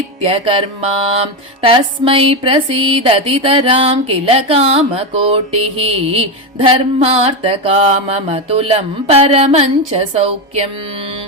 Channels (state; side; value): normal; both; correlation 0.12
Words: तस्मै प्रसीदतितराम् किल कामकोटिः धर्मार्थकाममतुलम् परमम् च सौख्यम्